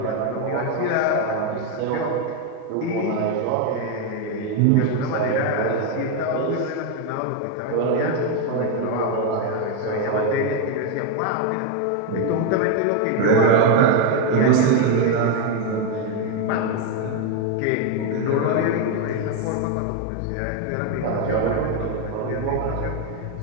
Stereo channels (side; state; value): both; different; correlation 0.02